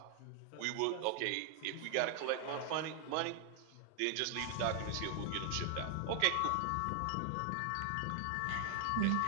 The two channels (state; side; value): different; both; correlation 0.00